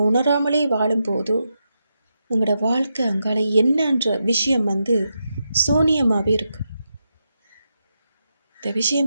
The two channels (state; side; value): inverted; both; correlation -0.86